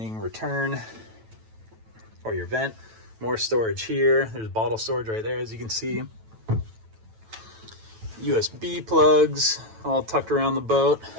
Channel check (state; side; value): late; left; 9.1 ms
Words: return or your vent. More storage here. There's bottle storage right there, as you can see. USB plugs all tucked around the boat.